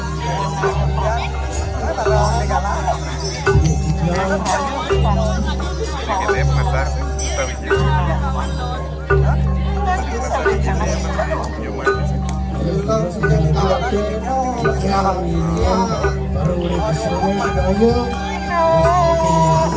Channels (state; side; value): identical; both; correlation 1.00